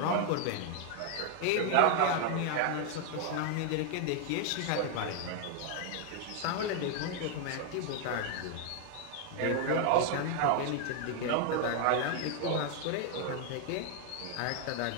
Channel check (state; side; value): different; both; correlation 0.00